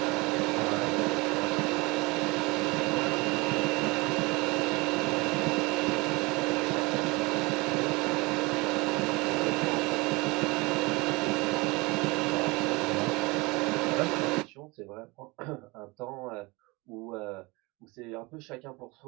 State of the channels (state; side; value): quieter; left; 24.8 dB